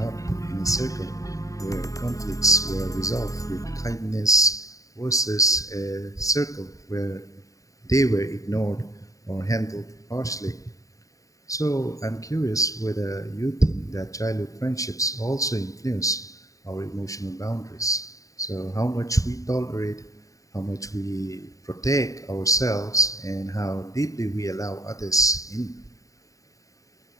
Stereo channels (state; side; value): late; right; 0.16 ms